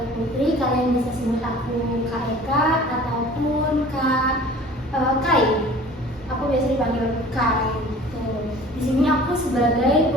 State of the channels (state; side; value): normal; both; correlation 0.46